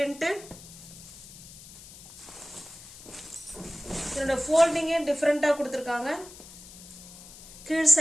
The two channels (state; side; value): noise; left; hiss, 17 dB below the sound